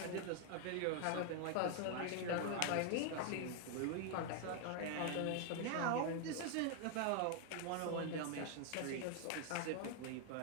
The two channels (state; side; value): different; both; correlation 0.00